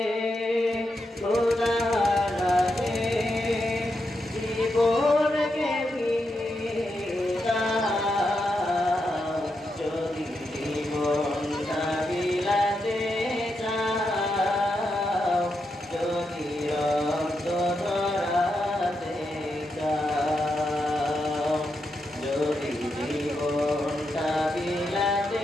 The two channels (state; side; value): normal; both; correlation 0.84